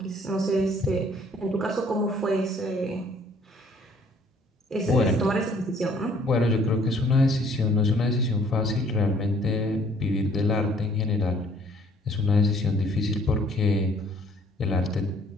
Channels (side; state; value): both; normal; correlation 0.59